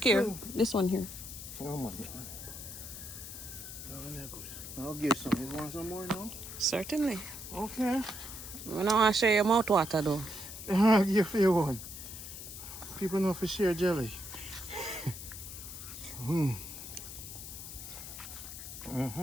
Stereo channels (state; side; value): noise; left; hiss, 10 dB below the sound